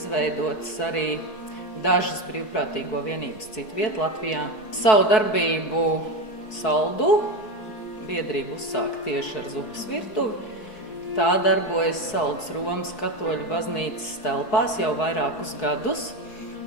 arī dažas brīvprātīgo vienības citviet Latvijā. Savu darbību Saldū biedrība uzsāka tieši ar zupas virtuvi. Tā darbojas Saldus Romas katoļu baznīcas telpās jau vairākus gadus,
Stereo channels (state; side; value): late; right; 4.6 ms